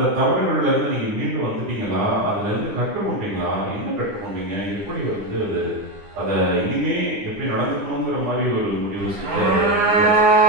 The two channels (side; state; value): left; late; 9.8 ms